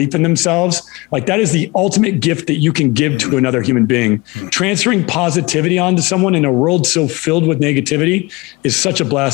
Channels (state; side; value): quieter; right; 24.2 dB